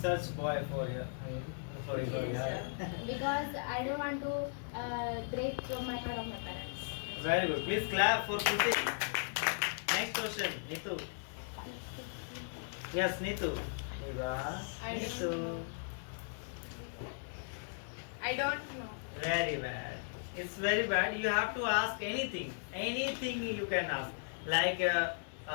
boy for you. Sorry, sorry. Because I don't want to break my heart of my parents. Very good. Please clap for Kruti. Next question, Nitu. Yes, Nitu. Eva. I don't Nitu. I don't know. Very bad. It's very bad. You have to ask anything. Anything you can ask. Like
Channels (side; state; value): right; silent; digital silence